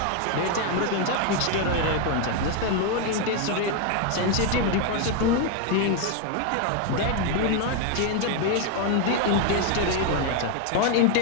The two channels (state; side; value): different; both; correlation 0.01